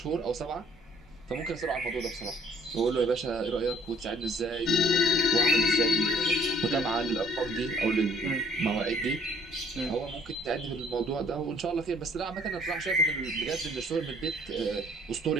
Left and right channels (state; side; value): normal; both; correlation 0.59